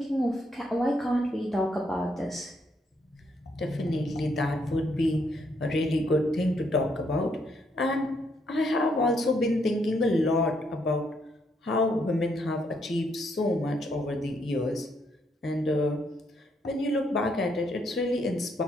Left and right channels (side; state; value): both; normal; correlation 0.74